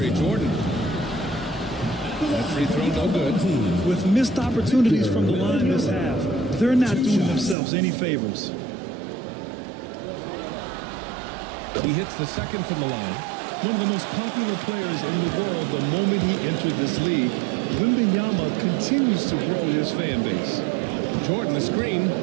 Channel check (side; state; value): left; drops out; at 7.6 s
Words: Jordan. That free throw no good. With missed opportunities from the line this half, they're not doing themselves any favors. He hits the second from the line. One of the most popular players in the world the moment he entered this league, Wembanyama continues to grow his fan base. Jordan, the screen